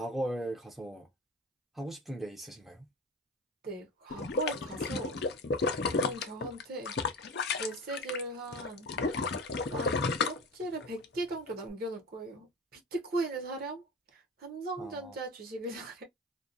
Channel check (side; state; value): both; normal; correlation 0.30